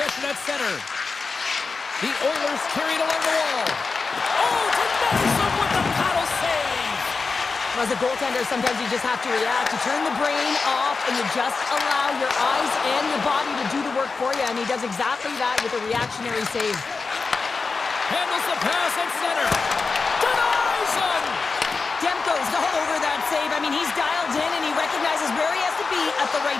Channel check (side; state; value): right; quieter; 4.4 dB